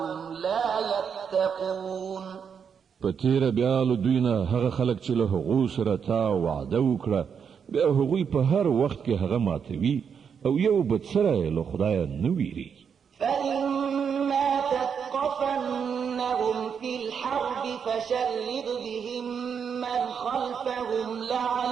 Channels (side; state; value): left; quieter; 7.0 dB